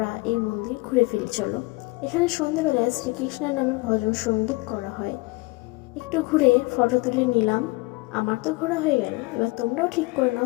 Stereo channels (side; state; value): right; quieter; 24.0 dB